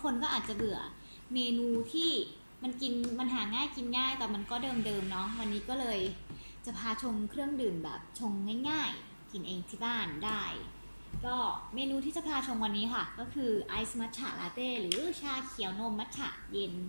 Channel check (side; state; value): both; inverted; correlation -1.00